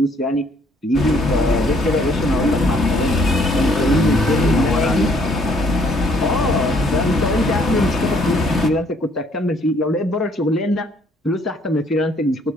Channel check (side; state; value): both; normal; correlation 0.64